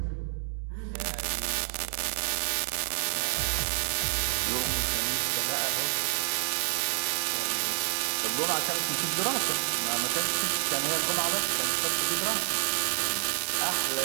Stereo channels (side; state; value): left; silent; 59 dB below the other